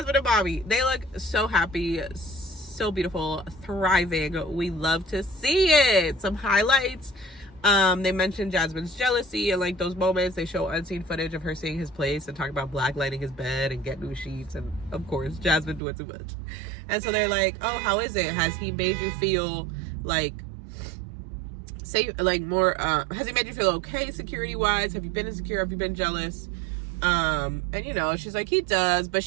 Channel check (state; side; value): drops out; left; at 15.8 s